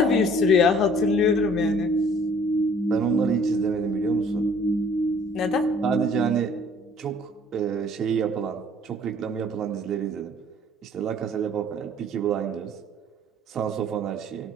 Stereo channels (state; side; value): normal; both; correlation 0.55